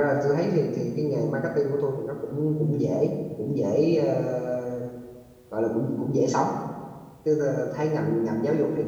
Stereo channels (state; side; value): identical; both; correlation 1.00